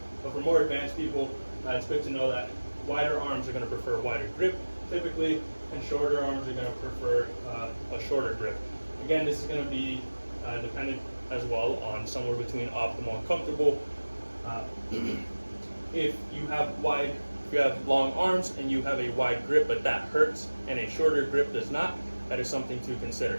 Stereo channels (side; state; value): both; inverted; correlation -1.00